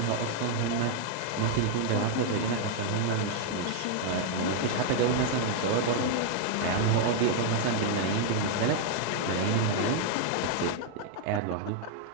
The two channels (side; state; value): both; different; correlation 0.00